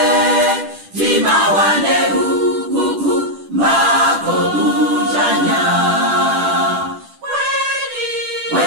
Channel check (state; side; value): late; left; 10 ms